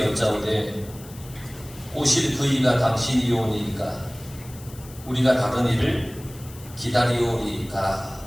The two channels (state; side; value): noise; left; hiss, 19 dB below the sound